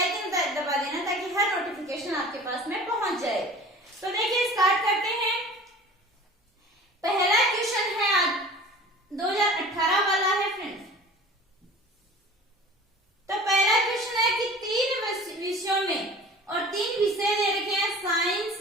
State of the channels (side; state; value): both; normal; correlation 0.42